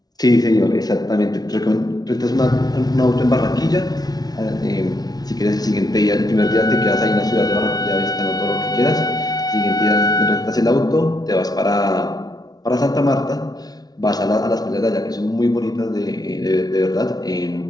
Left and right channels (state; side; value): late; right; 0.19 ms